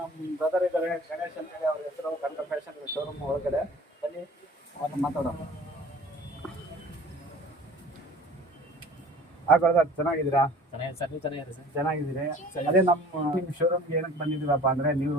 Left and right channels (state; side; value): normal; both; correlation 0.45